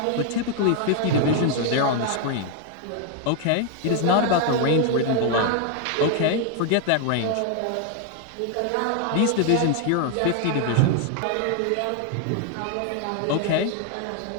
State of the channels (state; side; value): different; both; correlation 0.00